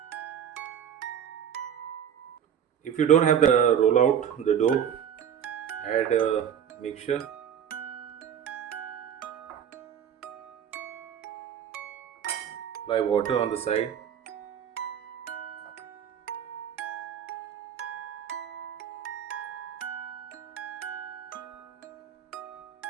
If you don't have the roll out the dough, add a mixture. Apply water on the side.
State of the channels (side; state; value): left; quieter; 8.8 dB